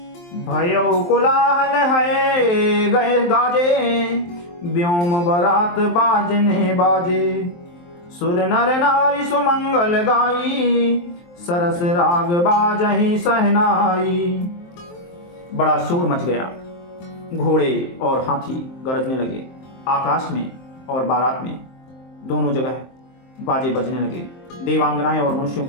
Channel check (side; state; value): right; late; 23 ms